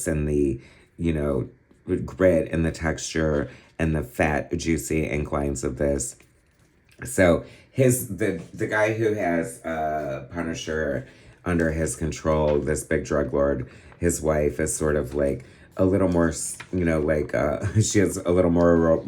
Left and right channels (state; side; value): identical; both; correlation 1.00